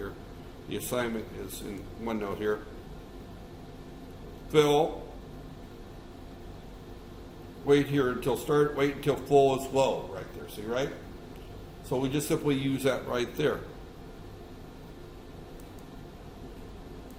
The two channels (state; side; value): identical; both; correlation 1.00